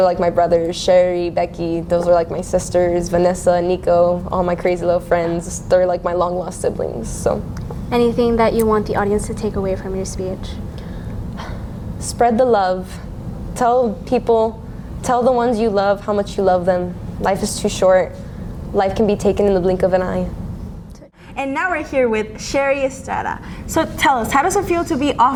like my brothers, Sherry, Becky. Those are like my sisters, Vanessa, Nico, all my crazy little friends. They're like my long lost siblings, so. Anything that you want the audience to take away from your speech? Spread the love. Tell people, tell the ones you love how much you love them. Life is too short. Life can be taken in the blink of an eye. And now we're here with Sherry Estrada. So tell us, how does it feel to be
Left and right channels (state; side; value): identical; both; correlation 1.00